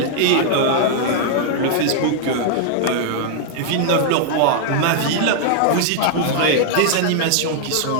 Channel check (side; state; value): both; different; correlation -0.01